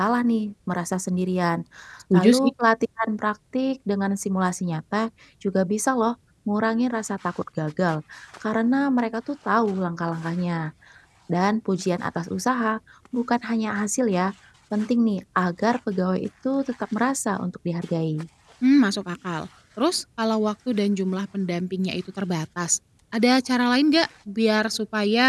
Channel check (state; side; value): identical; both; correlation 1.00